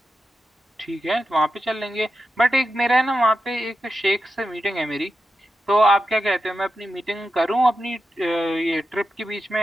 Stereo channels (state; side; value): normal; both; correlation 0.90